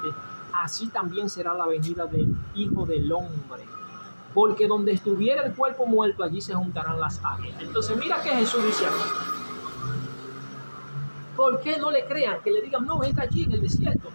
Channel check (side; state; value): both; inverted; correlation -1.00